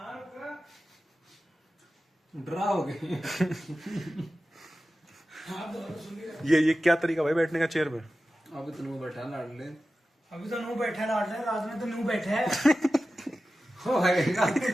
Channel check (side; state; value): both; normal; correlation 0.94